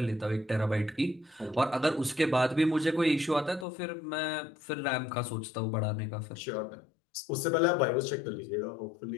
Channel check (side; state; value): right; drops out; at 3.7 s